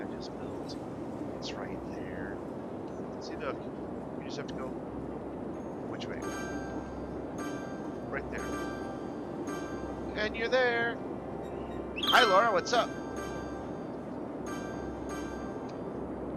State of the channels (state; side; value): identical; both; correlation 1.00